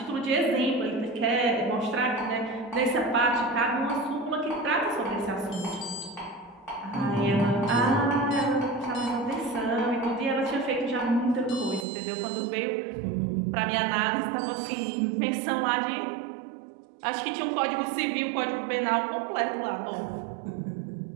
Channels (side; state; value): left; drops out; at 11.9 s